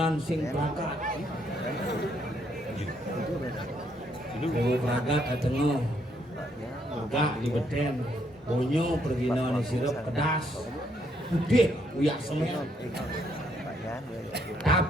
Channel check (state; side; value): normal; both; correlation 0.72